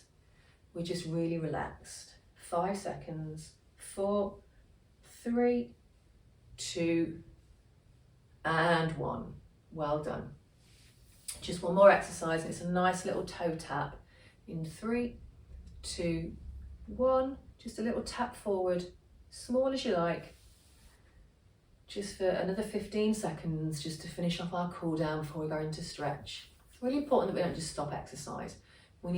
We're just really relaxed. 5 seconds. 4, 3, 2, and 1. Well done. Just one more exercise. It's a nice little toe tap. In 3, 2, 1. Just a little tap forward, small as you like. Just for another 15 seconds, just to finish off our cool down before we go into stretch. It's really important that we don't just stop exercise. We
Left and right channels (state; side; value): identical; both; correlation 1.00